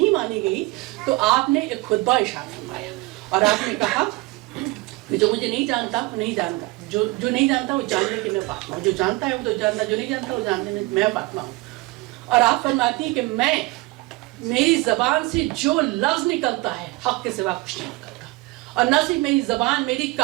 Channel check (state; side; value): quieter; left; 22.4 dB